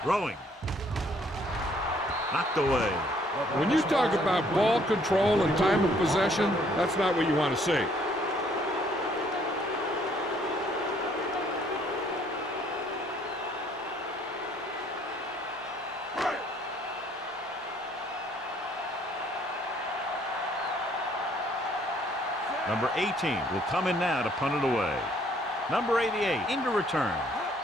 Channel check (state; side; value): normal; both; correlation 0.63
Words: Throwing. Knocked away. When you talk about ball control and time of possession, that's not what you want to see. Number 18 will come in now to punt it away. Number 88 into return.